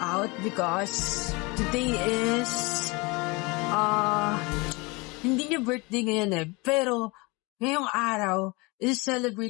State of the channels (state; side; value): quieter; right; 26.2 dB